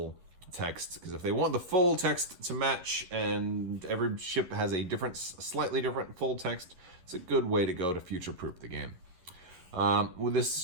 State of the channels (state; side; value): late; left; 11 ms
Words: text, because if they want the full text to match, and every ship has a slightly different full text, it's a good way to go to future-proof the game. Well,